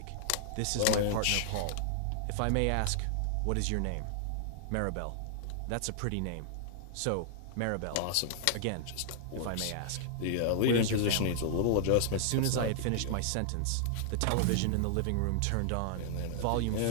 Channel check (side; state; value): both; different; correlation -0.01